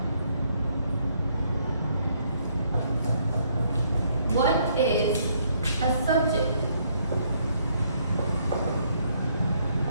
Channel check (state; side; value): inverted; both; correlation -0.69